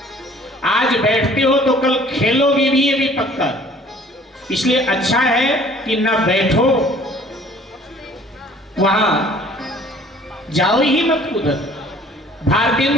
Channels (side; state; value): both; normal; correlation 0.53